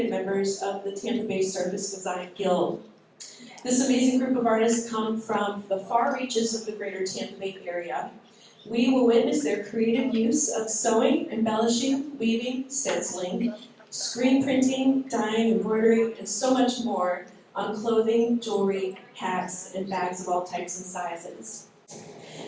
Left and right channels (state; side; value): identical; both; correlation 1.00